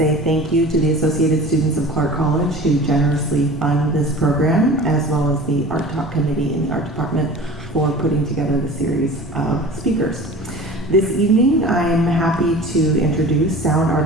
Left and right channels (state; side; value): normal; both; correlation 0.39